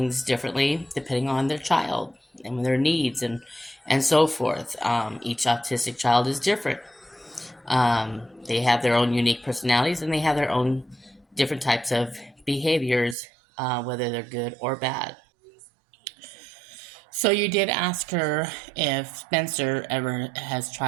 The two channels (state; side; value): drops out; left; at 13.2 s